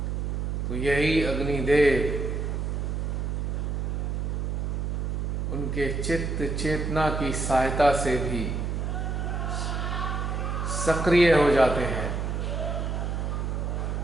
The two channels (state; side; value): noise; right; hum, 1 dB below the sound